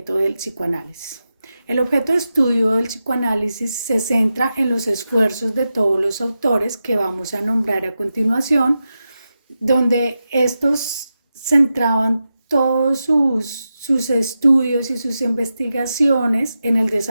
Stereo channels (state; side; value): inverted; both; correlation -0.90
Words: del psicoanálisis. El objeto de estudio del psicoanálisis se centra en los esfuerzos de todos los autores que vamos a nombrar a continuación, donde estos centraban todos sus estudios y sus investigaciones en el